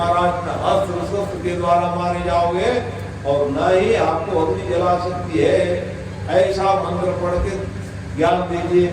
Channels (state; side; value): identical; both; correlation 1.00